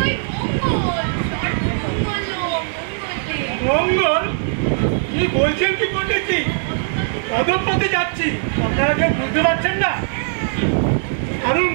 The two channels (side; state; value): left; silent; digital silence